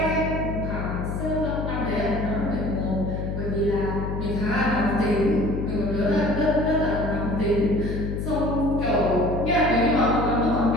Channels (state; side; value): noise; left; hum, 3 dB below the sound